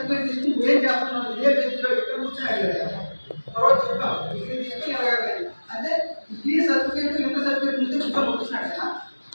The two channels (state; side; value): inverted; both; correlation -1.00